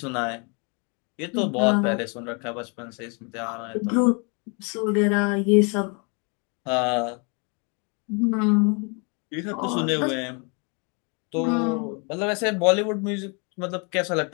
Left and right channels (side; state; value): right; quieter; 34.2 dB